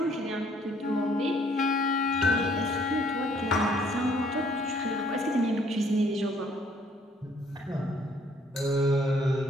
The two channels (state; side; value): normal; both; correlation 0.63